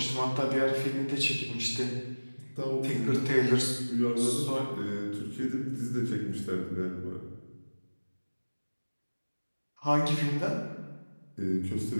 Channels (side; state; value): both; inverted; correlation -1.00